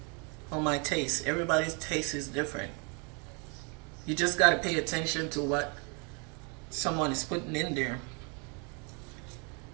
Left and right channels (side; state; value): left; quieter; 34.4 dB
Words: On my taste. Everybody's taste is different. You just got to pay attention to what someone is putting in there.